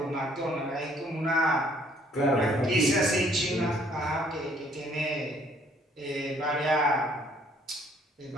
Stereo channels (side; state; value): both; normal; correlation 0.62